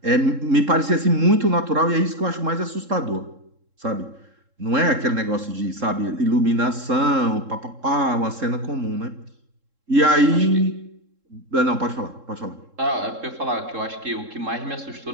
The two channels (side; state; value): left; late; 3.7 ms